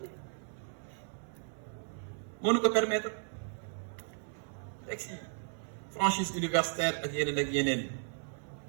moo nu ko permettre texte yi franchise universitaire ak yeneen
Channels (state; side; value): silent; left; 54 dB below the other